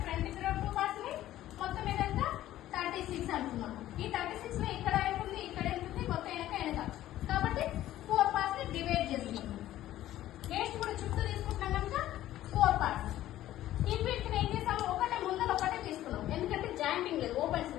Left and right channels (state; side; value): quieter; right; 13.9 dB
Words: ఫ్రంట్ కి 2 పార్ట్స్ ఉన్నాయి, మొత్తం ఏదంతా 36 అనుకున్నాం. ఈ 36 లో ఇక్కడ ఉంటుంది, ఇక్కడ ఉంటుంది, మొత్తం వెనక. కాబట్టి 4 పార్ట్స్ ని డివైడ్ చేస్తున్నాం. వేస్ట్ కూడా చుట్టూ తీసుకుంటున్నాం కనుక 4 పార్ట్స్. ఈ వీటిని ఏం చేస్తాము? ఒకటే ముందర ఒకటే తీసుకున్నాం, ఎందుకంటే జాయింటింగ్ లేదు, ఓపెన్స్